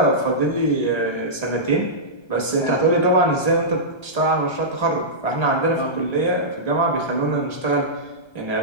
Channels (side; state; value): right; late; 1.3 ms